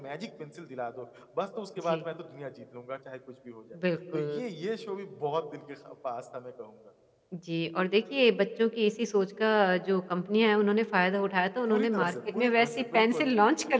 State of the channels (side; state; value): both; identical; correlation 1.00